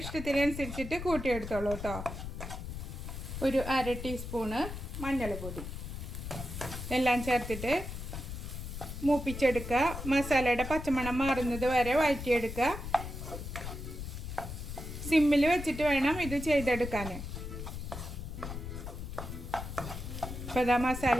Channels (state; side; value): noise; left; rumble, 7 dB below the sound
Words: ഇഷ്ടത്തിനനുസരിച്ചിട്ട് കൂട്ടിയെടുത്തോളൂ കേട്ടോ. ഒരു 1/2 ടീസ്പൂണ് മഞ്ഞൾപ്പൊടി. എല്ലാം ചേർത്തിട്ട് മൂപ്പിച്ചെടുക്കുക. മസാലയുടെ പച്ചമണം മാറുന്നത് വരെ വഴറ്റിയെടുക്കുക. സിമ്മിൽ വെച്ചിട്ട് വേണം ഇത് ചെയ്തെടുക്കാൻ. ഇപ്പോൾ ഇതാ മസാല